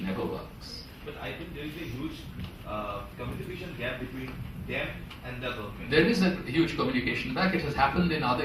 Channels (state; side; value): identical; both; correlation 1.00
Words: never works. But I think there is a huge communication gap between them and the government. There is a huge communication gap. It has happened in other